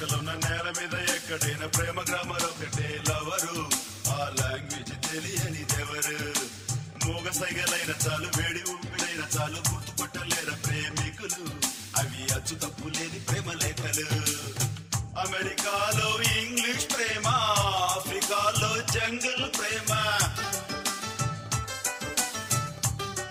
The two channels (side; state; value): both; identical; correlation 1.00